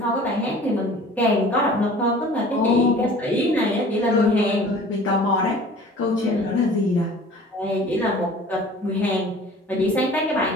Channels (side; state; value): both; normal; correlation 0.46